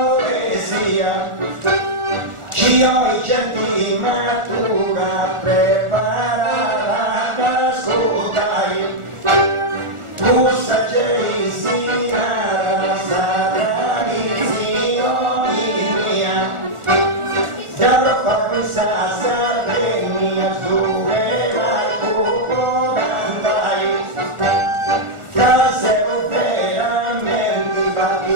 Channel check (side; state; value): left; late; 1.4 ms